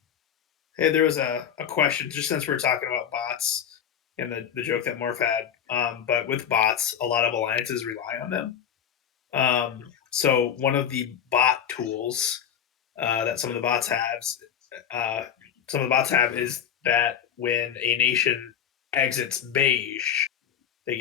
Hey, there was a question just since we're talking about bots and the joke that Morph had. But with bots, a lot of alliances rely on them. So one of the bot tools that uh, some of the bots have is that when a nation exits Beige, they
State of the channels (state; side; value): quieter; right; 8.8 dB